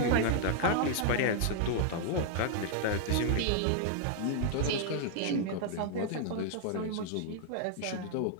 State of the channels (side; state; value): both; different; correlation 0.00